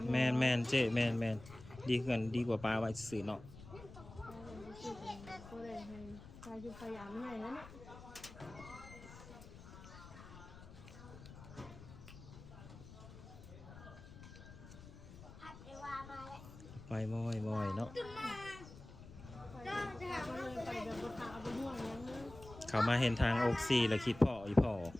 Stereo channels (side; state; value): left; noise; rumble, 16 dB below the sound